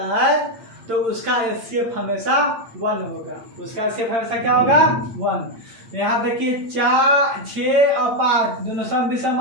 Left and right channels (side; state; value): left; late; 8.8 ms